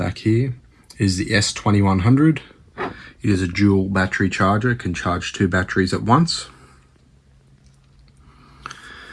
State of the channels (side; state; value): both; identical; correlation 1.00